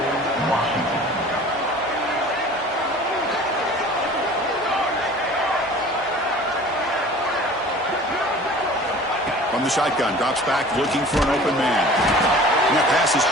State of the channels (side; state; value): both; normal; correlation 0.44